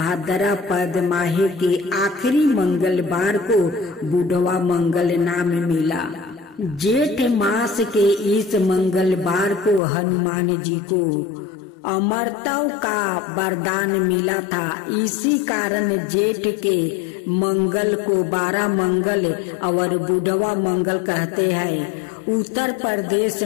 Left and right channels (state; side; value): drops out; right; at 9.8 s